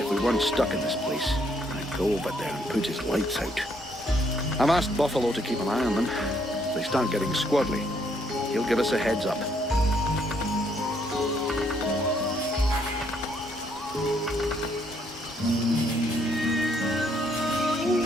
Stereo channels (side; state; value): both; normal; correlation 0.70